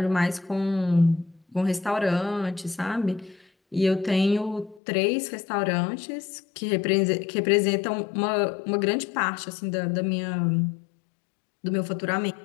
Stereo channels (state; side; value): drops out; right; at 4.8 s